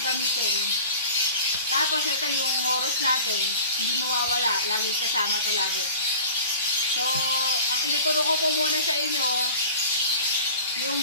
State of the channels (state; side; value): inverted; both; correlation -0.41